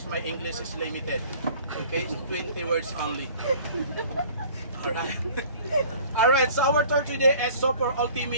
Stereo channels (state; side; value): inverted; both; correlation -0.49